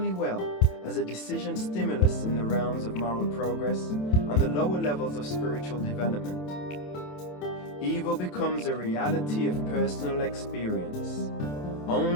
well as a decision stimulus in the realms of moral progress and the lower levels of spiritual development. Evil becomes a reality of personal experience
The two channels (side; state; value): right; late; 27 ms